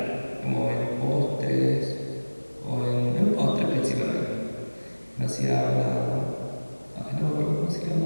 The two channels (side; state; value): both; inverted; correlation -1.00